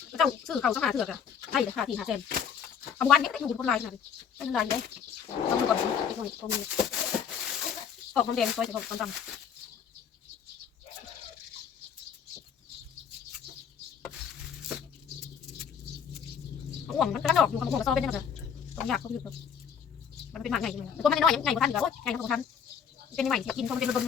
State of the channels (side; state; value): right; quieter; 7.4 dB